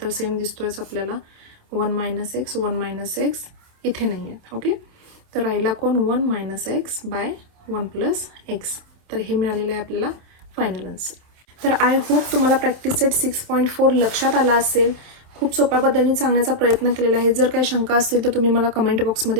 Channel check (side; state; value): left; late; 27 ms